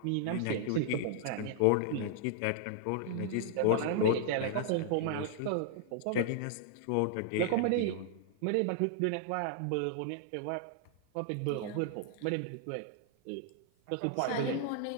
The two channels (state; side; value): different; both; correlation -0.01